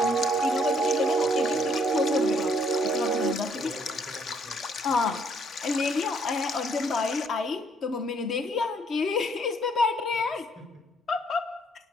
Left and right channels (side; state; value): both; normal; correlation 0.66